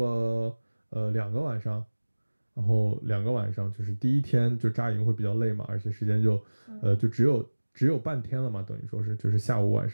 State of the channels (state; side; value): inverted; both; correlation -1.00